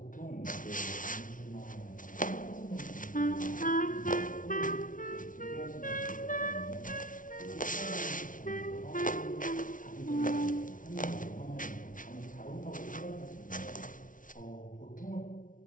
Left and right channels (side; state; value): right; late; 0.38 ms